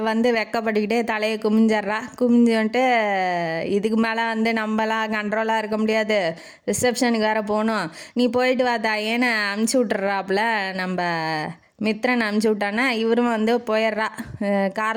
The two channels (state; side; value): identical; both; correlation 1.00